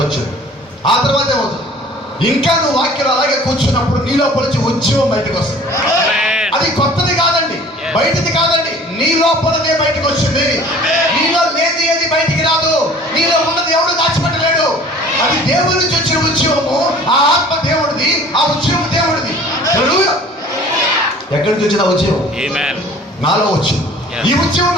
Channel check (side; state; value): both; normal; correlation 0.48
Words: వచ్చింది. ఆ తర్వాత ఏమవుతుంది? ఇంకా నువ్వు వాక్యం అలాగే కూర్చున్నప్పుడు నీ లోపల నుంచి ఉద్యమం బయటకు వస్తుంది. అది కొత్తది కాదండి, బయటది కాదండి, నీ లోపలనే బయటకు వచ్చింది. నీలో లేని ఏది బయటికి రాదు, నీలో ఉన్నది ఎవడు దాచిపెట్టలేడు. అది దేవుడి నుంచి వచ్చిన ఉద్యమము, ఆ ఆత్మ దేవుడిది, ఆ ఉద్యమం దేవుడిది. ఎక్కడి నుంచి వచ్చిన ఉద్యమం? నాలో వచ్చింది. ఈ ఉద్యమం